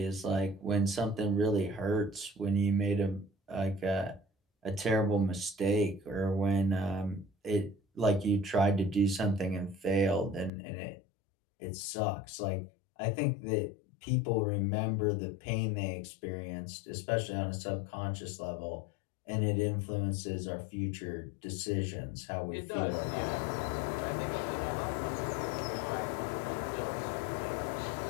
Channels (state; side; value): drops out; right; at 10.5 s